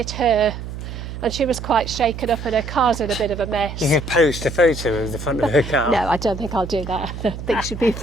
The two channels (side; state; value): right; noise; hum, 9 dB below the sound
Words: her. And she was quite shaken up and her car's in a bit of a mess. You could post a photo of the front of her car. No, I don't think I'll do that. I think she'd be